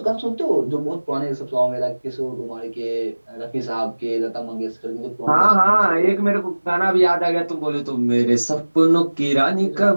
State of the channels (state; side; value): inverted; both; correlation -1.00